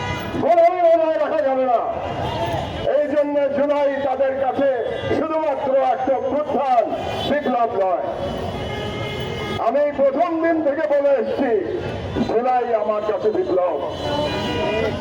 গোলামি বজায় রাখা যাবে না। এই জন্য জুলাই তাদের কাছে শুধুমাত্র একটা প্রধান বিপ্লব নয়। আমি প্রথম দিন থেকে বলে এসছি জুলাই আমার কাছে বিপ্লব।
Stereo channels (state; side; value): identical; both; correlation 1.00